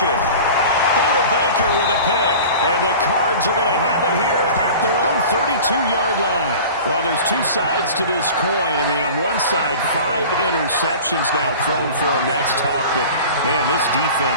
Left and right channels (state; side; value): inverted; both; correlation -0.39